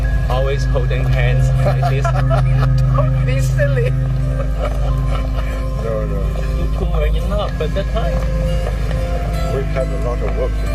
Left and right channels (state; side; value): identical; both; correlation 1.00